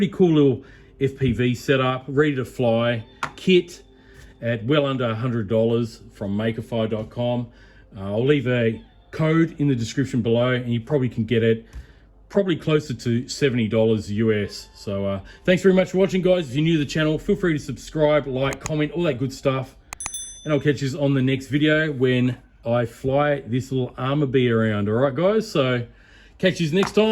cool little FPV setup, ready to fly kit at well under $100 from Makerfire.com. I'll leave a code in the description below, and you probably can get it probably closer to $70 US. So thanks very much for watching, guys. If you're new to the channel, feel free to subscribe, like, comment, all that good stuff. And I'll catch you on the next video when I fly this little Armor Bee around. All right, guys? So catch you next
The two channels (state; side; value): identical; both; correlation 1.00